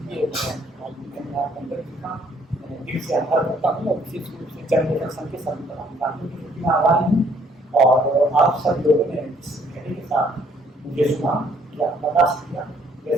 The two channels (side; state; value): both; normal; correlation 0.64